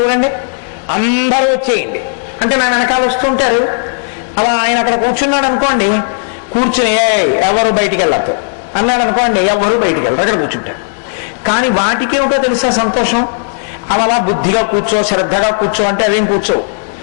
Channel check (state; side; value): silent; right; digital silence